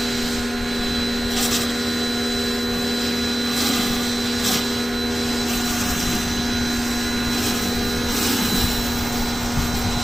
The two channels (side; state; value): both; normal; correlation 0.96